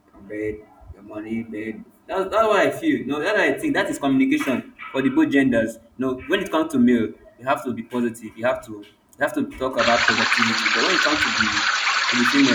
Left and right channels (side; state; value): both; identical; correlation 1.00